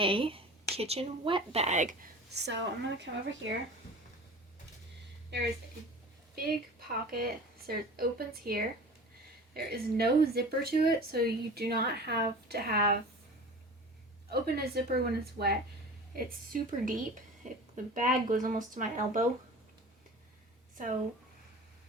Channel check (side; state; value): both; normal; correlation 0.38